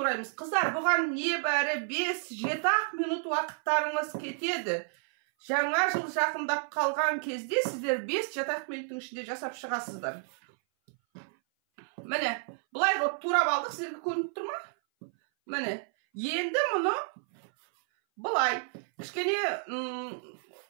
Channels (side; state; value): left; silent; 57 dB below the other